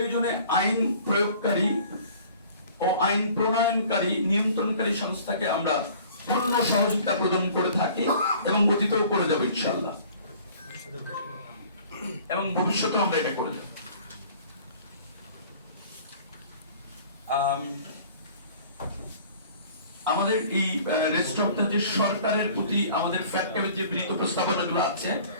আইন প্রয়োগকারী ও আইন প্রণয়নকারী নিয়ন্ত্রণকারী সংস্থাকে আমরা পূর্ণ সহযোগিতা প্রদান করে থাকি এবং অতীতেও করে যাব ইনশাআল্লাহ, এবং ভবিষ্যতে আমরা এটা করে যাব। আমাদের এই রেস্টুরেন্টটা যে সরকারের প্রতি আমাদের ফ্যাক্টরির যে বিনীত প্রস্তাবনাগুলো আছে,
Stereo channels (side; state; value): both; inverted; correlation -0.50